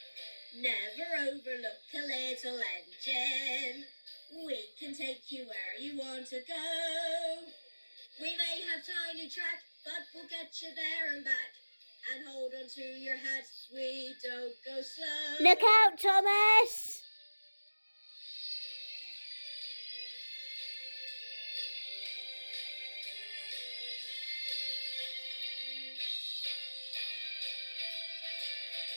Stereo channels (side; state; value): both; inverted; correlation -1.00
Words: Never overlook a little engine. We can take you where you want to go. We may have tiny track, but we'll get you there and back. And hold on to your hats, we don't go slow. Look out, Thomas!